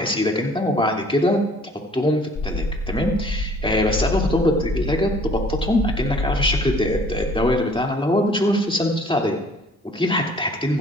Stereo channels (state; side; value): normal; both; correlation 0.55